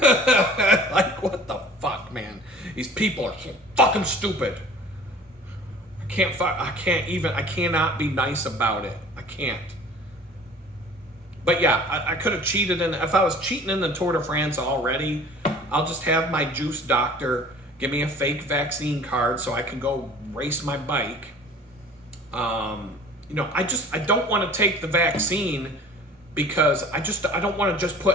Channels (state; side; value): normal; both; correlation 0.46